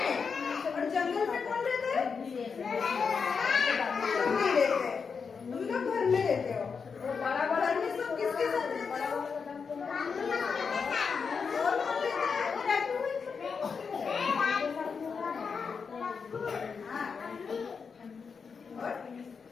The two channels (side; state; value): right; quieter; 5.7 dB